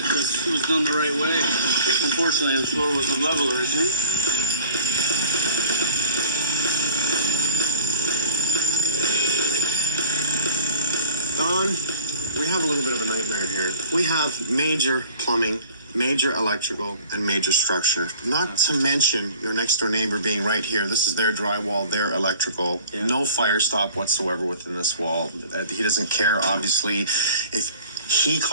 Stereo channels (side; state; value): both; inverted; correlation -0.48